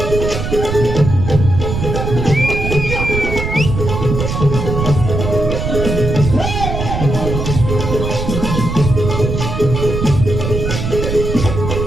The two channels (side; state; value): right; noise; rumble, 3 dB below the sound